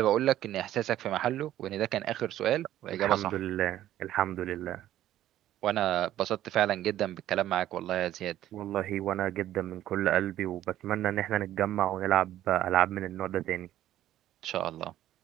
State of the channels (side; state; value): left; quieter; 13.0 dB